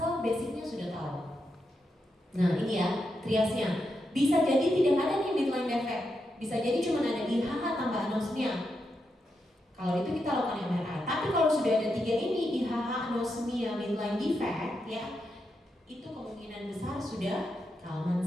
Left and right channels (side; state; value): both; normal; correlation 0.85